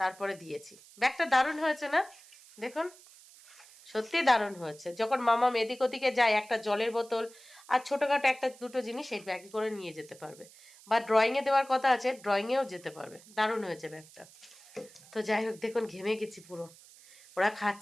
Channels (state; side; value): noise; right; hiss, 22 dB below the sound